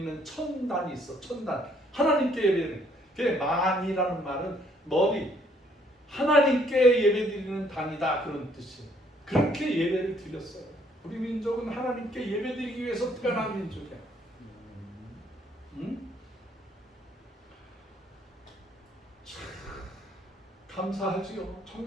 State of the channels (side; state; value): both; normal; correlation 0.66